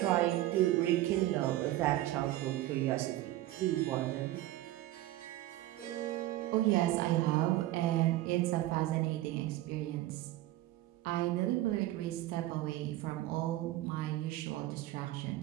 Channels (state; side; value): quieter; left; 15.6 dB